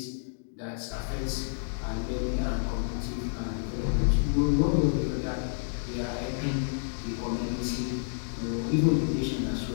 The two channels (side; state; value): right; silent; digital silence